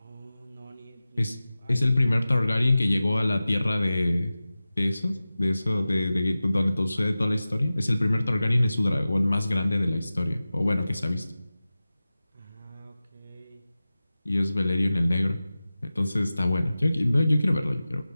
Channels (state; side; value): inverted; both; correlation -0.96